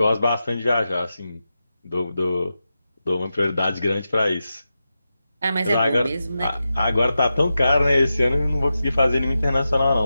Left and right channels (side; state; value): both; inverted; correlation -0.91